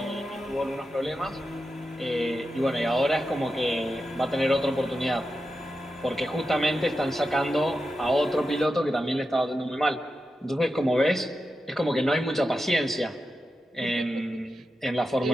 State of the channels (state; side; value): normal; both; correlation 0.90